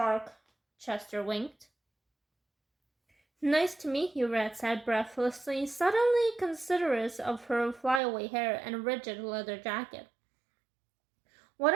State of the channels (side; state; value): left; drops out; at 8.0 s